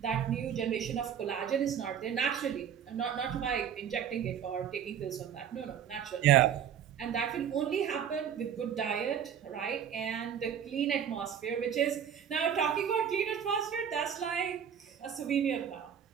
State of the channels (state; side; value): quieter; left; 8.5 dB